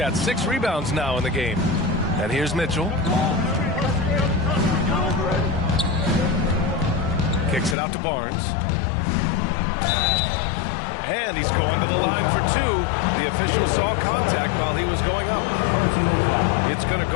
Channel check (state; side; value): drops out; right; at 7.8 s